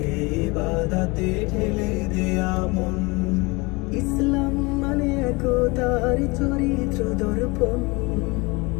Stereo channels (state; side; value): quieter; right; 25.9 dB